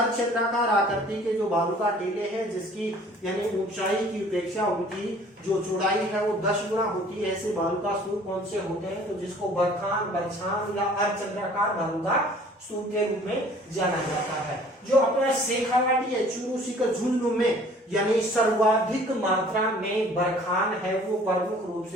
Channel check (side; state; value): both; normal; correlation 0.52